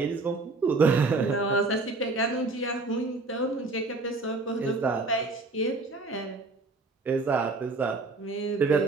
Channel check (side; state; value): left; quieter; 3.5 dB